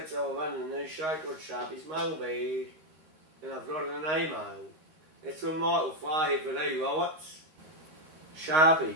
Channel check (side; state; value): left; late; 13 ms